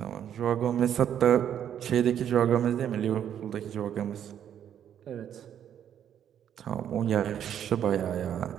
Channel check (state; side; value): quieter; left; 9.6 dB